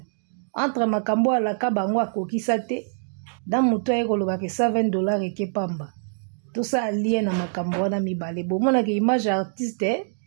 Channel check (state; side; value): silent; left; digital silence